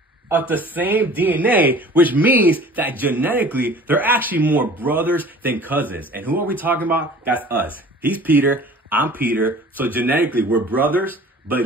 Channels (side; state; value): both; normal; correlation 0.45